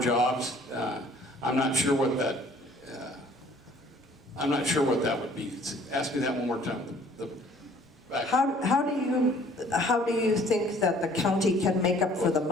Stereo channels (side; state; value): both; normal; correlation 0.56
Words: I'm not sure what that. I'm not sure what that would be. Ask me that one more time. How do you think that the county can make up for the